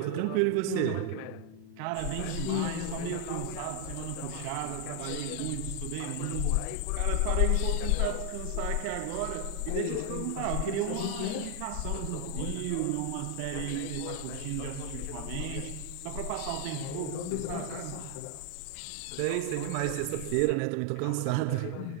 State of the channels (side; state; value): both; different; correlation 0.00